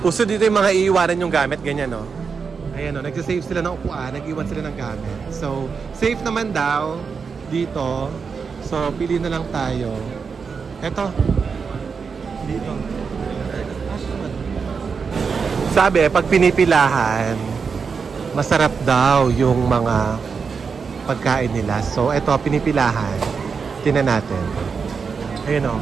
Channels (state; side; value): quieter; left; 5.5 dB